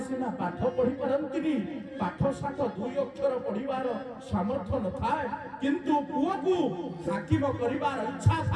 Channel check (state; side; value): identical; both; correlation 1.00